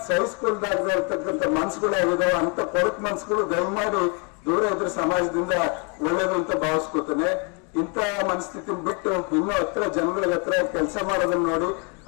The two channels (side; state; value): right; quieter; 35.7 dB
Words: ಸಹಿಸ್ಕೊಳ್ದಾಗದೆ ಇರ್ತಕ್ಕಂಥ ಮನ್ಸುಗಳಾಗಿದಾವೆ ಅಂತ ಕೊರಕ್ ಮನ್ಸುಗಳು ದಯಮಾಡಿ ದೂರ ಇದ್ರೆ ಸಮಾಜದಿಂದ ಒಳ್ಳೇದು ಅಂತ ಭಾವಿಸ್ಕೊತಾನೆ. ಇಂಥ ಮನಸ್ಥಿತಿ ಬಿಟ್ಟು ಇನ್ನೂ ಹತ್ರ ಜನಗಳ ಹತ್ರ ಕೆಲಸ ಮಾಡೋದನ್ನ ನೋಡಿ